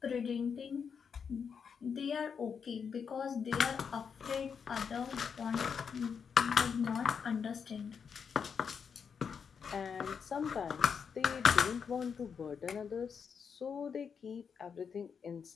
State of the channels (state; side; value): quieter; right; 6.5 dB